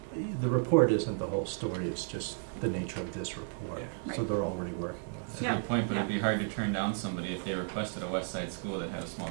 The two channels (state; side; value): silent; left; 56 dB below the other